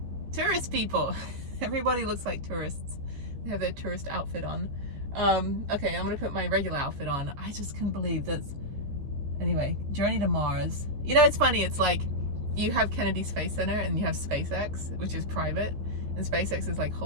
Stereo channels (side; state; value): left; late; 14 ms